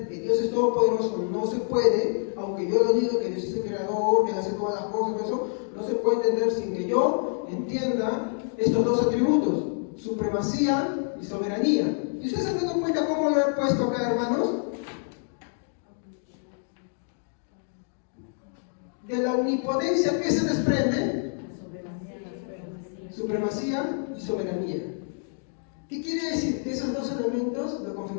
que Dios es todopoderoso no se puede, aunque yo lo digo que Dios es el creador, que hace todas las cosas, eso no se puede entender sin que yo entienda estos dos atributos, supremacía y soberanía. ¿Y ustedes se han dado cuenta cómo lo he puesto acá, hermanos? de la omnipotencia, ¿qué se desprende? Supremacía y soberanía. ¿Qué quiere decir? Que esos dos elementos lo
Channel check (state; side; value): silent; right; 60 dB below the other